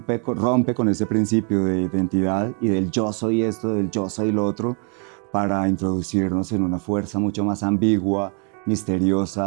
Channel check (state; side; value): quieter; left; 37.9 dB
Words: con ese principio de identidad y del yo soy esto, del yo soy lo otro, para introducirnos en una fuerza mucho más ambigua,